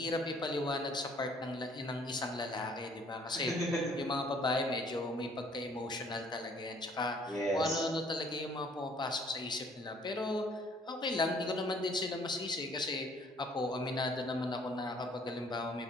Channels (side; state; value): both; normal; correlation 0.60